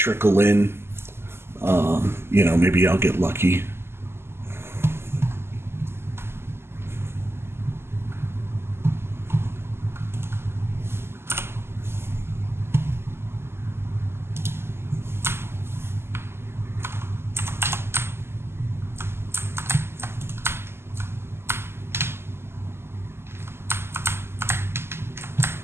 in. Maybe I'll get lucky.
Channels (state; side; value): late; left; 0.12 ms